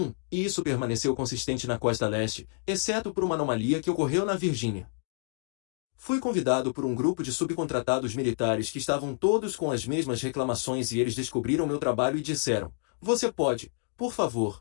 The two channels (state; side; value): silent; right; digital silence